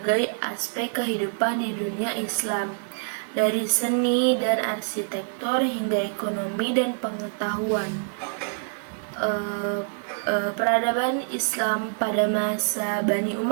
aspek kehidupan di dunia Islam, dari seni dan arsitektur hingga ekonomi dan pengetahuan. Peradaban Islam pada masa Bani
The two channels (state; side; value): silent; left; digital silence